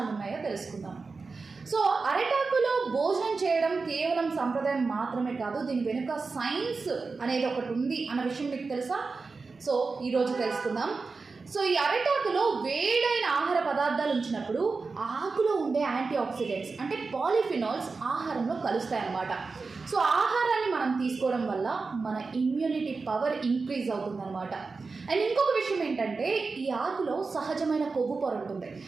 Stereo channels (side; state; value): left; quieter; 4.3 dB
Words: ఉన్నాయో తెలుసుకుందాం. సో అరిటాకులో భోజనం చేయడం కేవలం సంప్రదాయం మాత్రమే కాదు, దీని వెనుక సైన్స్ అనేది ఒకటి ఉంది అన్న విషయం మీకు తెలుసా? సో ఈరోజు తెలుసుకుందాం. సో ఈ అరిటాకులో వేడైన ఆహార పదార్థాలు ఉంచినప్పుడు ఆకులో ఉండే యాంటీ ఆక్సిడెంట్స్ అంటే పాలిఫినాల్స్ ఆహారంలో కలుస్తాయన్నమాట. సో ఆహారాన్ని మనం తీసుకోవడం వల్ల మన ఇమ్యూనిటీ పవర్ ఇంక్రీజ్ అవుతుందన్నమాట. అండ్ ఇంకొక విషయం ఏంటంటే ఈ ఆకులో సహజమైన కొవ్వు పొర ఉంటుంది.